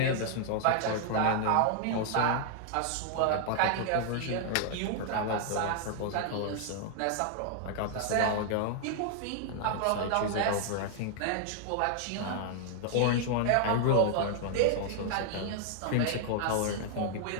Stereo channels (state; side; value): different; both; correlation 0.00